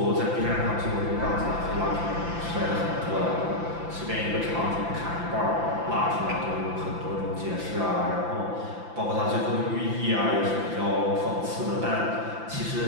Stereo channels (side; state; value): left; late; 5.9 ms